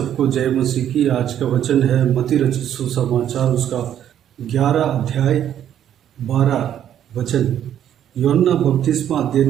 जय मसीह की। आज का वचन है मत्ती रचित सुसमाचार उसका 11 अध्याय 12 वचन। यूहन्ना बपतिस्मा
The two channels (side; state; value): left; quieter; 10.3 dB